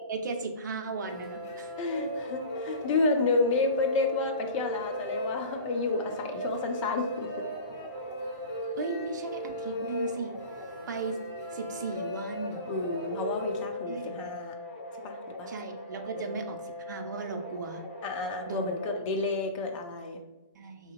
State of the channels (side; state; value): both; inverted; correlation -0.35